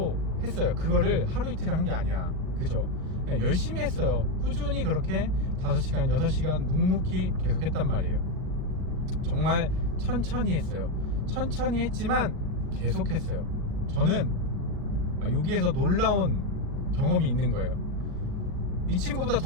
했어요. 그거를 하루 이틀 한 게 아니야. 그죠? 열심히 했어요. 꾸준히 그렇게 5시간, 6시간 묵묵히 계속 했단 말이에요. 정말 천천히 했어요. 천천히 했지만 계속 했어요. 저는 여기에서 놀라운 경험이 있는 거예요. 이 친구보다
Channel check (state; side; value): late; left; 39 ms